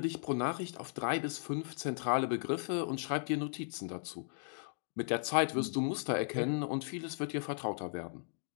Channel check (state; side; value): silent; right; digital silence